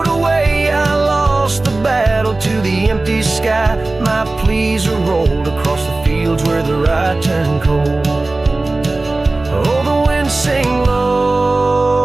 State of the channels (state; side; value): quieter; left; 3.1 dB